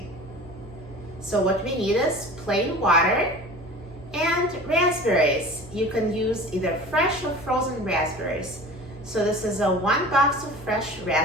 So what we need is plain water and raspberries. You can use either fresh or frozen raspberries. So this is a 1 box of fresh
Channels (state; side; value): normal; both; correlation 0.39